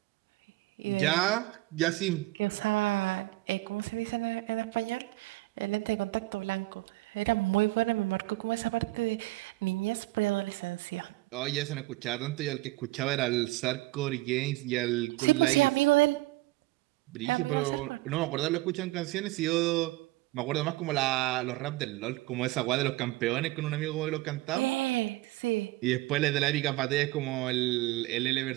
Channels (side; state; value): left; quieter; 20.1 dB